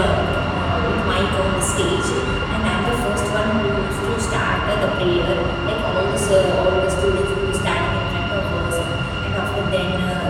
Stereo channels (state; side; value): identical; both; correlation 1.00